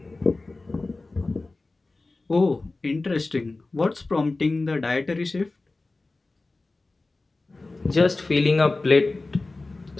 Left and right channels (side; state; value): right; quieter; 3.3 dB